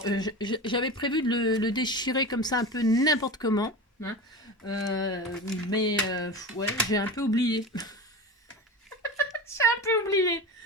J'avais prévu de le déchirer comme ça un peu n'importe comment. Hein. Ouais, j'ai un peu oublié.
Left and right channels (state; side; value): normal; both; correlation 0.28